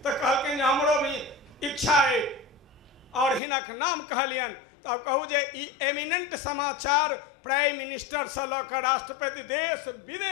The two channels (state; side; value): drops out; right; at 3.4 s